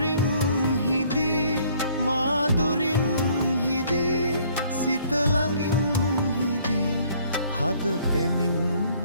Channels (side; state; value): both; inverted; correlation -0.60